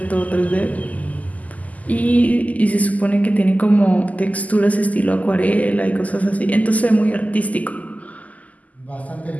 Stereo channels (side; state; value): right; late; 0.075 ms